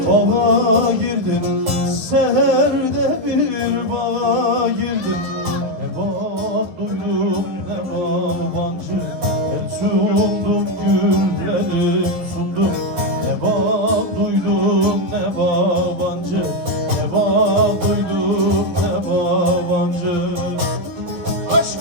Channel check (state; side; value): late; left; 11 ms